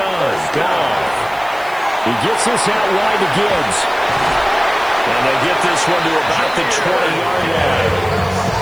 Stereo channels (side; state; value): right; noise; hiss, 23 dB below the sound